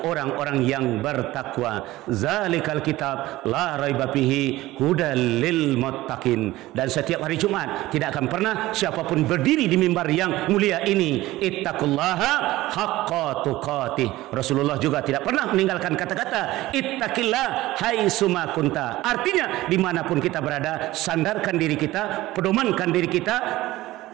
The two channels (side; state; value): left; quieter; 17.3 dB